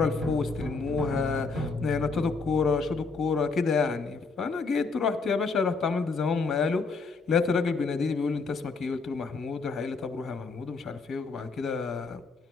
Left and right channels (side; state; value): right; quieter; 4.3 dB